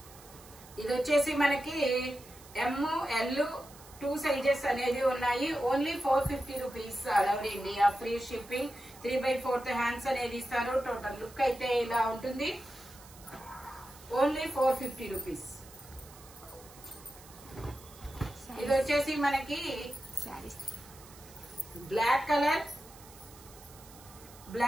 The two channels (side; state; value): right; noise; hiss, 20 dB below the sound